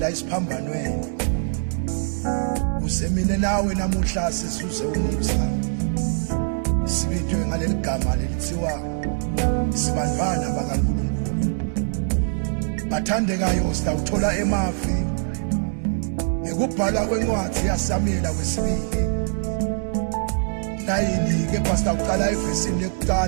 isiphambanweni. Kusemine nawe namuhla sizuze umusa, sibitwe ngaleli gama lelithiwa sibandvana bakaNkulunkulu. Bathandekayo sitawuthola emavi ngekubhalwa kwencwadi yaSamuela wesibili 9 kepha sitawuqala evesini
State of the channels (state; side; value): silent; left; 63 dB below the other